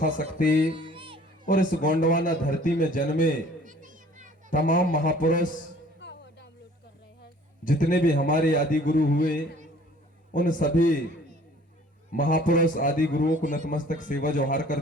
शक्ति और इस गोंडवाना धरती में जन्मे तमाम महापुरुष जितने भी हमारे आदि गुरु हुए, उन सभी महापुरुष आदि गुरुओं को नतमस्तक सेवा जोहार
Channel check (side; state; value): both; normal; correlation 0.53